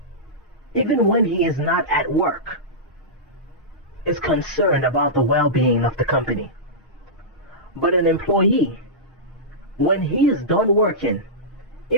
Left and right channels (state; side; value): normal; both; correlation -0.15